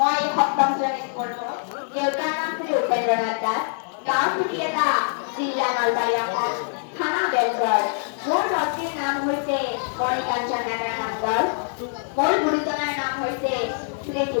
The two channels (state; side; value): silent; right; digital silence